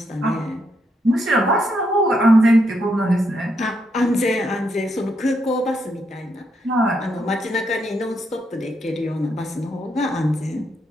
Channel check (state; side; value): normal; both; correlation 0.78